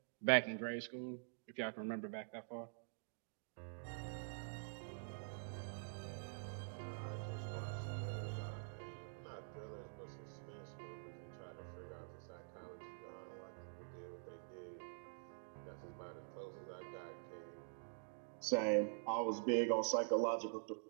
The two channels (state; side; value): silent; left; digital silence